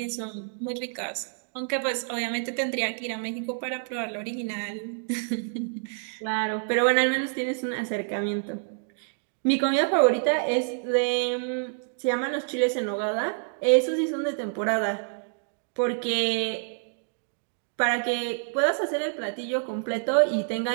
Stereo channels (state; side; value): silent; left; digital silence